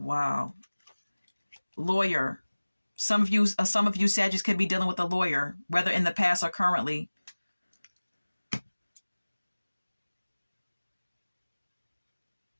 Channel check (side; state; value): both; inverted; correlation -1.00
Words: Lawyer. Some of you Sagittarius could be dealing with a lawyer, whether in the past or currently.